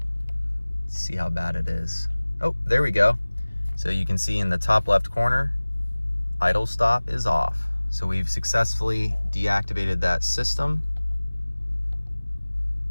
Let's see how bad it is. Oh, there we go. So you can see in the top left corner, idle stop is off. So we've successfully deactivated that system.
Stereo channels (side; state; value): both; inverted; correlation -1.00